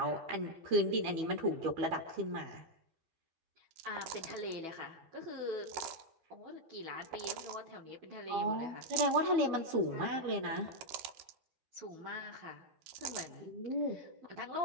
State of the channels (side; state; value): left; late; 13 ms